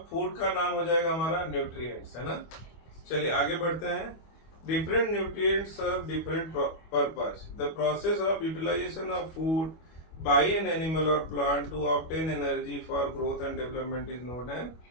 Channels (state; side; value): late; right; 25 ms